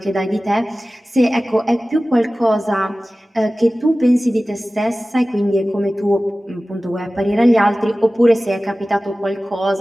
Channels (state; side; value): normal; both; correlation 0.97